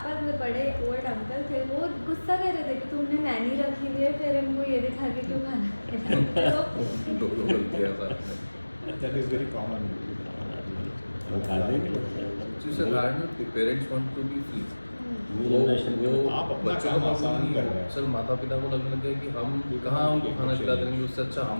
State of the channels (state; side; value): inverted; both; correlation -1.00